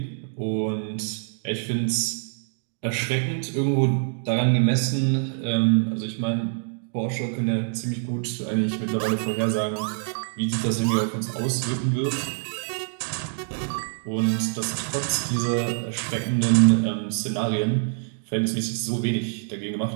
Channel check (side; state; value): left; silent; digital silence